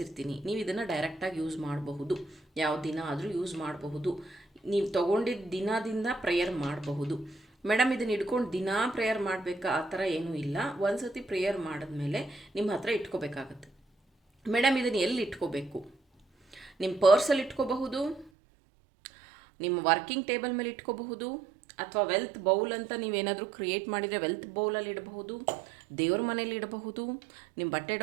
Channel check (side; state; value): left; drops out; at 18.3 s